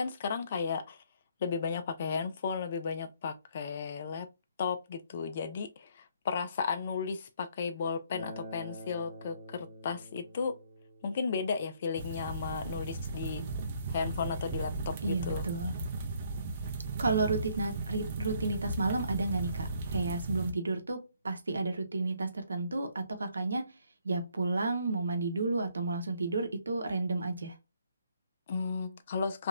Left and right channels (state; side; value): inverted; both; correlation -0.67